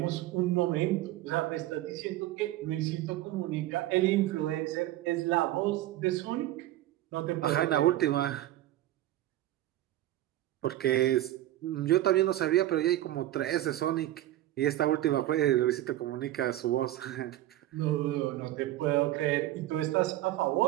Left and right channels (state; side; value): quieter; left; 14.7 dB